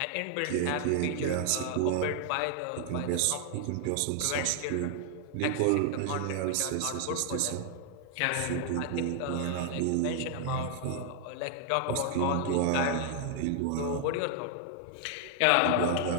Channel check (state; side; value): different; both; correlation 0.00